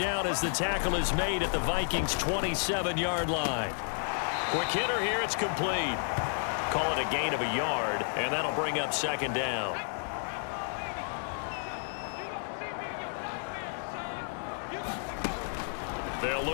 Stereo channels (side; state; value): right; silent; 57 dB below the other